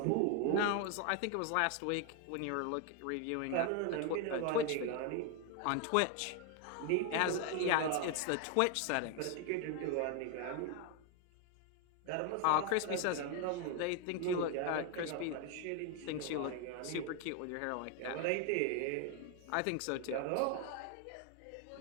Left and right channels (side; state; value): both; different; correlation 0.01